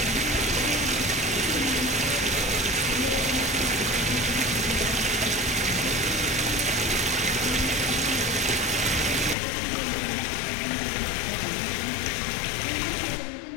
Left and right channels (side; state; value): right; drops out; at 9.3 s